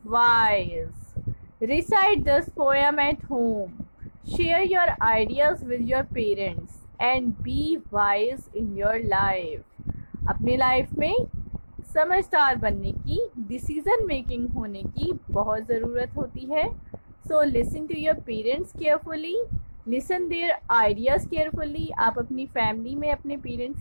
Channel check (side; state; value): both; inverted; correlation -1.00